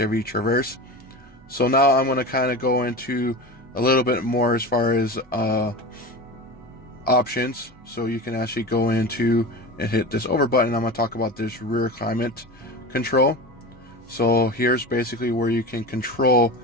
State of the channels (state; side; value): normal; both; correlation 0.29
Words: Traverse. So now I'm going to kind of go into a little bit more as far as options. So you can actually go into and hit this over button. I'm going to talk about this rear climate control. So here's basically where you can control